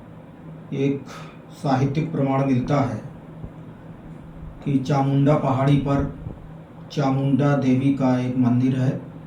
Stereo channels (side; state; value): both; identical; correlation 1.00